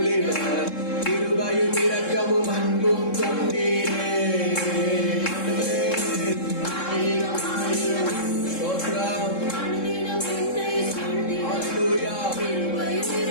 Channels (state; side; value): late; right; 3.7 ms